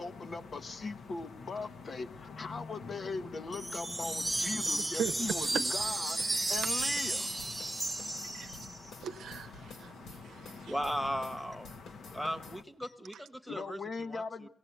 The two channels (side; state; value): both; normal; correlation 0.90